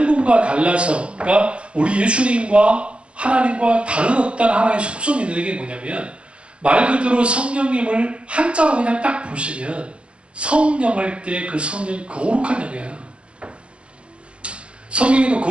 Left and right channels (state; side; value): late; left; 0.059 ms